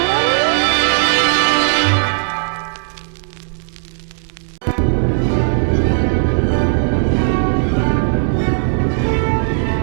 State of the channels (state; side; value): silent; left; digital silence